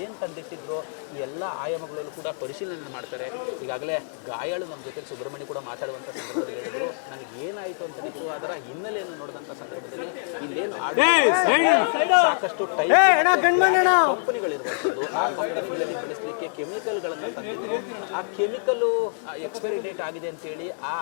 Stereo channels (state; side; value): silent; right; digital silence